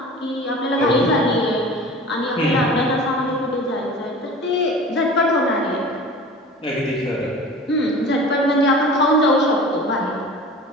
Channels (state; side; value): normal; both; correlation 0.39